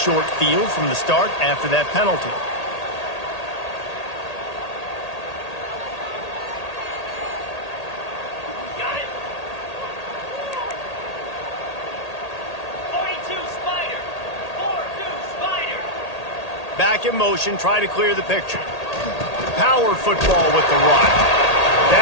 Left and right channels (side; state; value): right; late; 1.8 ms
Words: field from the start after that penalty. Got it. 42 Spider. 4-2 Spider. Back in motion, try to clear the picture. Power football with the run.